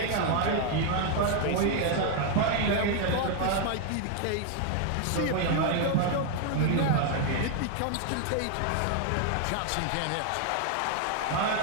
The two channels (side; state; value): both; different; correlation 0.00